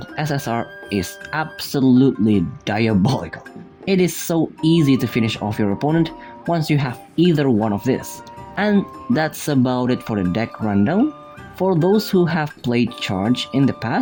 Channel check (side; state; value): both; identical; correlation 1.00